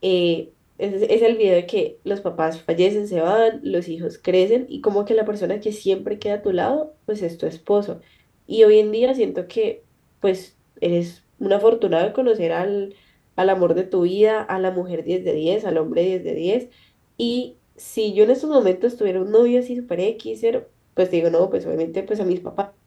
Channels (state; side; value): identical; both; correlation 1.00